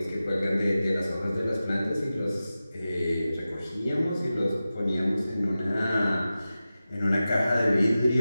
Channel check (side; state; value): both; inverted; correlation -0.94